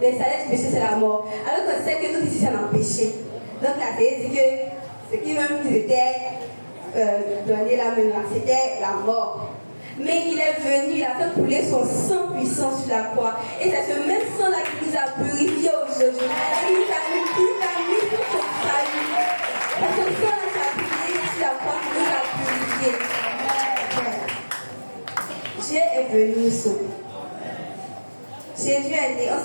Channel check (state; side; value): inverted; both; correlation -1.00